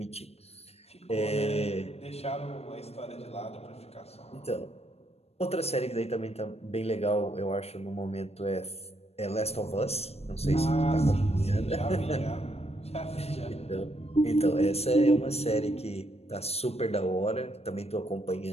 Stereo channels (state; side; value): late; right; 0.30 ms